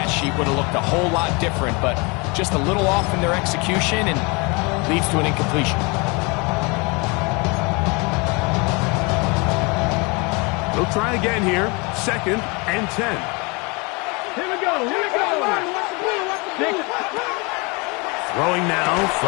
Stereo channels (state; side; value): quieter; right; 28.9 dB